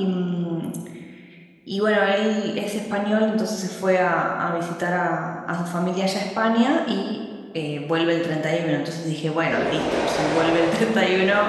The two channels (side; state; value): both; identical; correlation 1.00